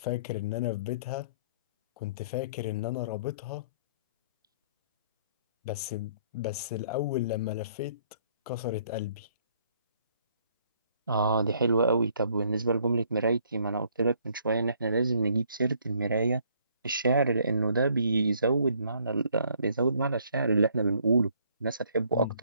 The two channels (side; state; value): both; inverted; correlation -0.64